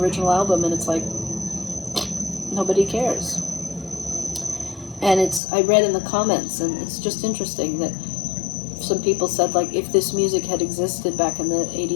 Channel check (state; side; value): drops out; right; at 5.4 s